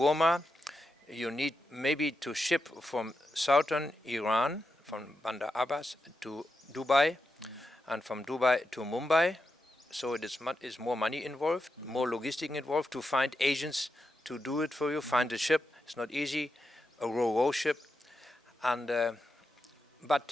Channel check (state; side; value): normal; both; correlation 0.87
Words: You need maybe to ship from southern Iran, from Bandar Abbas to Dubai, and from Dubai to Mumbai. So it is more money involved, more logistic involved to find agents to do it for you, find a ship. It's not easy, a ro-ro ship, and